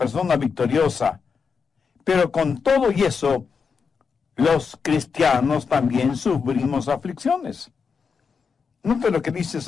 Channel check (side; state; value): right; quieter; 5.7 dB